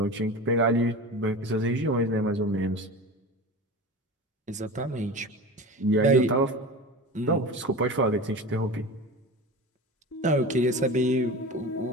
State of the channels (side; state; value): both; normal; correlation 0.31